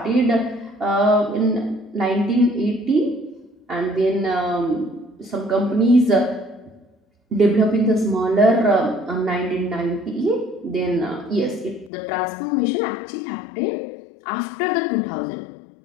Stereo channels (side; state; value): right; drops out; at 11.9 s